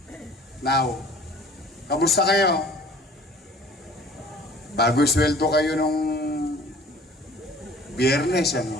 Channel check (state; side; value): normal; both; correlation 0.49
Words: Now, kamusta kayo? Bago sweldo kayo nung Biyernes, ano?